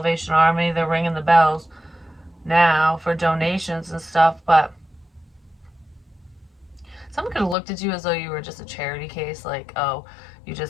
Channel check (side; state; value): right; drops out; at 7.6 s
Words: Army, they're ringing the bells now for donations and stuff, but someone could have looked at you as though you were just a charity case, like, oh, you